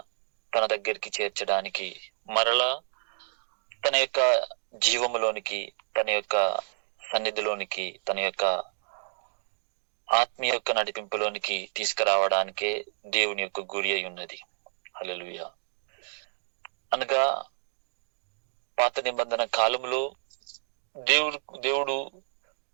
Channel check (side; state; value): left; silent; digital silence